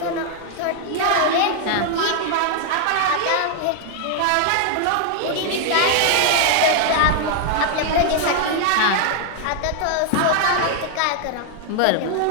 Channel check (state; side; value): different; both; correlation 0.00